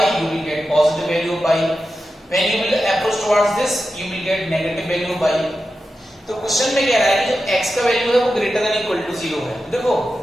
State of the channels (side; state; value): both; normal; correlation 0.91